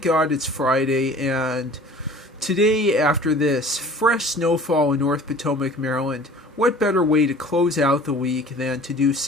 God it's Friday, and today, after this fresh snowfall in North Potomac, Maryland, what better way to close out the week than to do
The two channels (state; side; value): normal; both; correlation 0.46